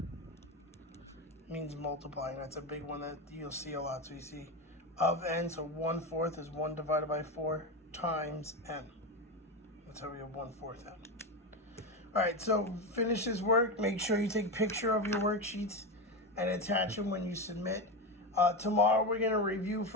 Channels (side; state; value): both; normal; correlation 0.16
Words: means multiplying. That's a big one that you'll see a lot. So you see of n, so 1/4 is 1 divided by 4 times n. That's how we have 1/4 n. All right, so finish this work. Make sure you take a picture of your worksheets and attach them when you submit. Tomorrow we're going to review